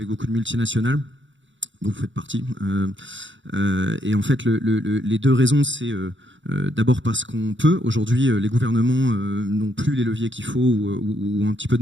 beaucoup de multinationales. Donc, vous faites partie. Et en fait, les deux raisons, c'est d'abord parce qu'on peut. Aujourd'hui, les gouvernements n'ont plus les leviers qu'il faut ou ont un petit peu de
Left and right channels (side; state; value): left; late; 0.55 ms